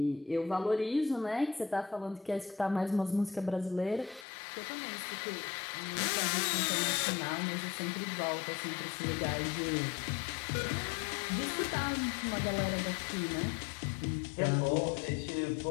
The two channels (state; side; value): drops out; right; at 4.2 s